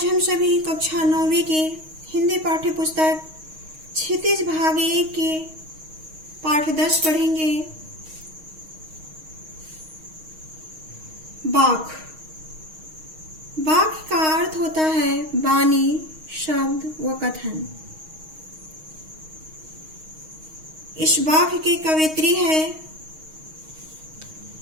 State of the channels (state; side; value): late; left; 6.4 ms